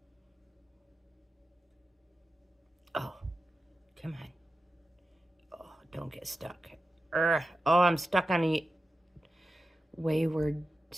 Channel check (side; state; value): both; normal; correlation 0.92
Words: Oh, come on. Don't get stuck. Oh, I'm stuck on wayward